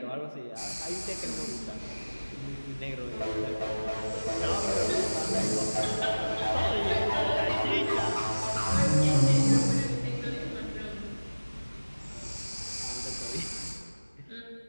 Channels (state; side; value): inverted; both; correlation -1.00